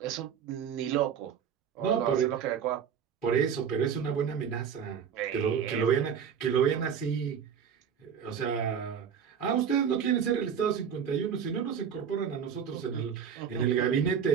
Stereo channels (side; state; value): left; quieter; 7.6 dB